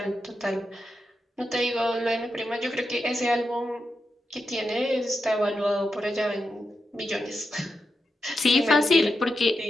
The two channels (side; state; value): both; normal; correlation 0.87